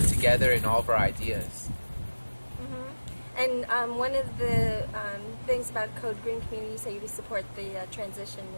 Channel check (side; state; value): both; inverted; correlation -1.00